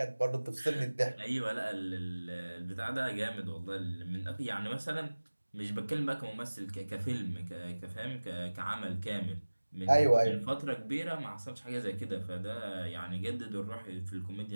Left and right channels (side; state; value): both; inverted; correlation -1.00